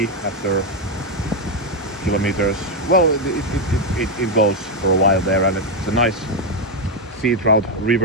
after kilometers. Well, it goes for a while there, and it's a nice sea trout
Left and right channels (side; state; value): both; normal; correlation 0.03